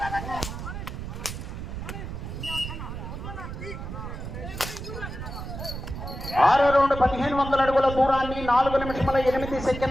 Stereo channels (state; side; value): noise; right; rumble, 8 dB below the sound